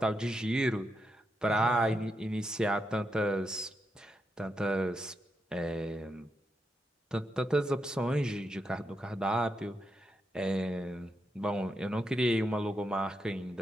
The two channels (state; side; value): normal; both; correlation 0.84